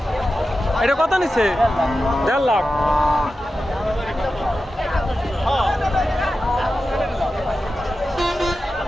এটা কত নিছে? 1.5 লাখ।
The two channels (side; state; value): both; normal; correlation 0.92